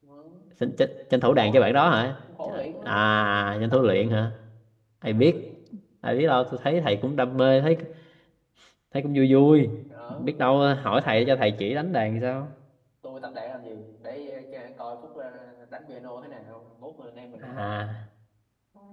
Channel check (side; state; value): both; identical; correlation 1.00